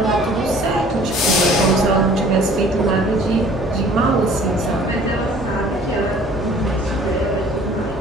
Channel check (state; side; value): normal; both; correlation 0.52